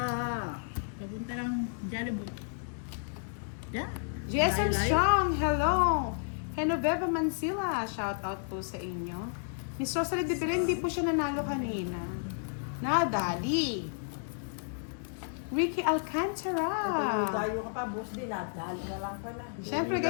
Papunta ng Jollibee. Yeah. Jason Live. Strong, hello. Genoveva Mansilla, shout out po sa inyo. Miss Rosalie de Belen, hindi po siya nanalo kanina. Nadali. Ricky Alcantara. Tayo ka pa, boss din. Dahil na lang pala. Siyempre,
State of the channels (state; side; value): silent; right; digital silence